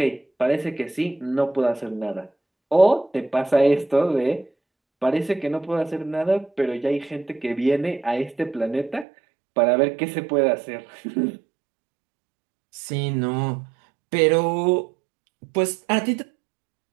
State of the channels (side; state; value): left; drops out; at 9.1 s